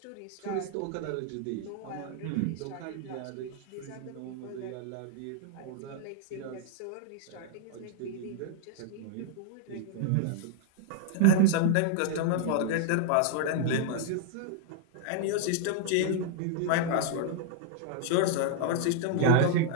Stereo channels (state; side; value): different; both; correlation -0.01